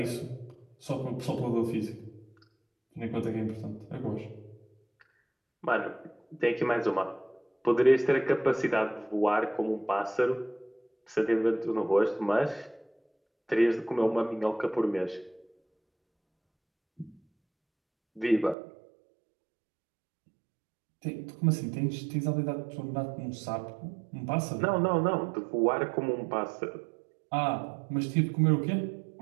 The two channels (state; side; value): drops out; left; at 18.6 s